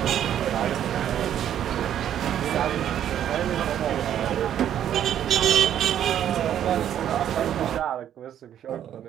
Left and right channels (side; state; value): left; quieter; 10.4 dB